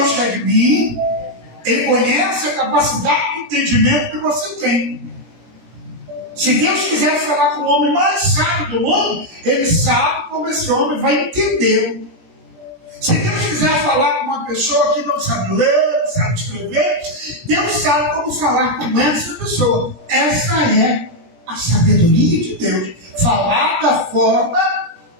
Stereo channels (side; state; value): left; late; 17 ms